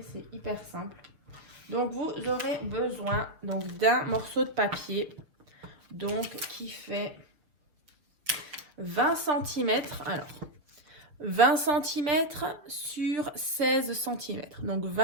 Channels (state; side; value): late; left; 6.7 ms